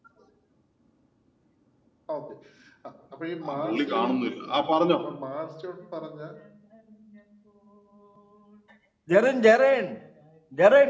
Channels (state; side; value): identical; both; correlation 1.00